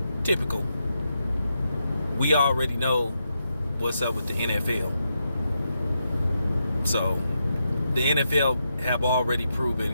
Typical. We already know what's up with the NFL. So, the NFL have already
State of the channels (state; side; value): inverted; both; correlation -0.84